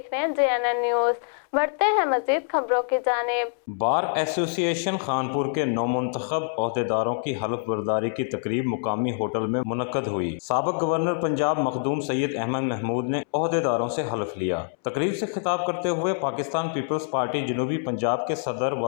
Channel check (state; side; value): silent; right; 61 dB below the other